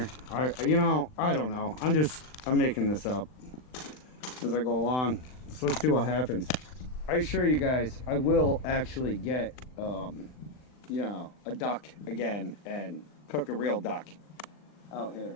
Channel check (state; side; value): late; right; 39 ms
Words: You know, I don't know. I'm making this up as I go along. So let's see what happens. I assure you guys, I will actually get, you know, a duck again and cook a real duck out